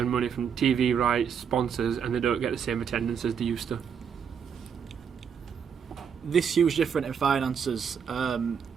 money from TV rights, sponsors, and they don't get the same attendance as they used to. This huge difference in finances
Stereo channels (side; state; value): left; quieter; 7.2 dB